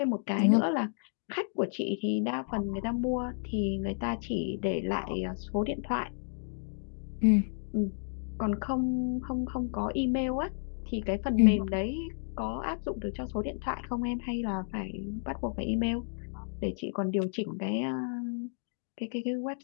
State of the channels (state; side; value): silent; right; digital silence